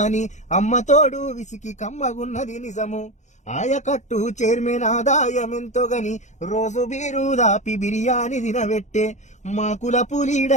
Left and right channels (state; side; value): late; right; 0.34 ms